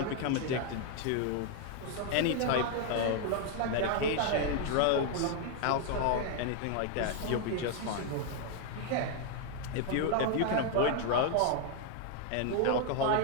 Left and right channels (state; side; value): different; both; correlation 0.00